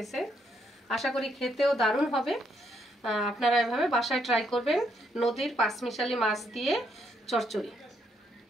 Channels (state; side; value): normal; both; correlation 0.74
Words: আশা করি খেতেও দারুণ হবে। আপনারা এভাবে বাসায় ট্রাই করবেন। নদীর পাঁচমিশালি মাছ দিয়ে চচ্চড়ি।